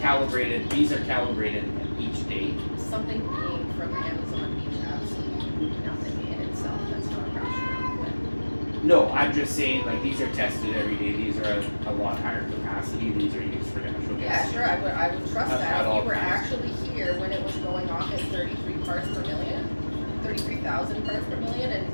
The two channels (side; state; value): both; inverted; correlation -1.00